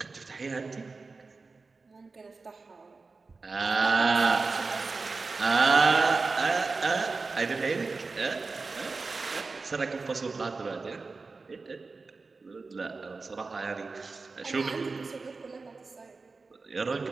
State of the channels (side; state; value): left; quieter; 4.0 dB